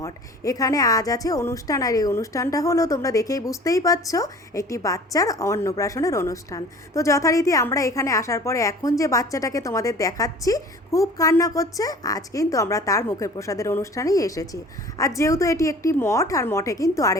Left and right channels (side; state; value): both; normal; correlation 0.45